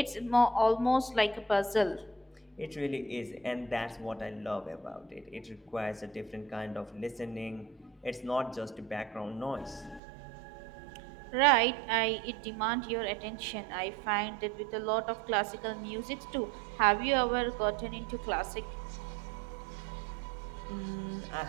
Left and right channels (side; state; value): left; drops out; at 10.0 s